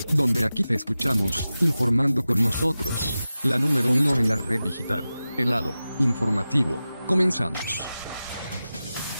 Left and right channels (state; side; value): inverted; both; correlation -0.95